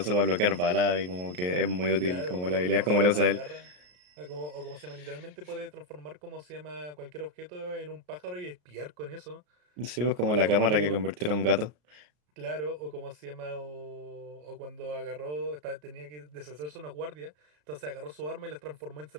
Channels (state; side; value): late; left; 33 ms